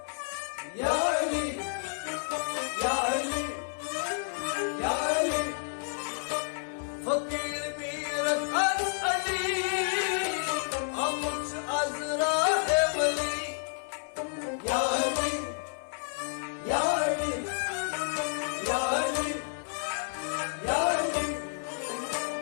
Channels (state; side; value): silent; right; 58 dB below the other